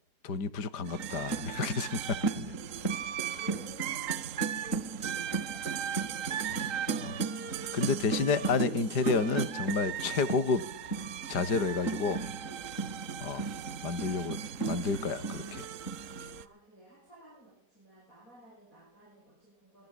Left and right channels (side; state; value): right; late; 3.9 ms